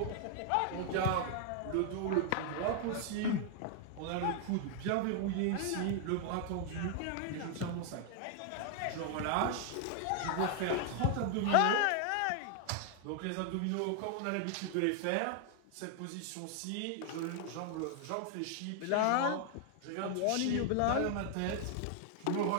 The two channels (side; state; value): both; different; correlation 0.00